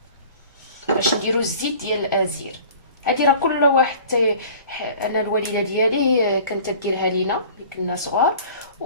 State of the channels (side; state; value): both; inverted; correlation -0.45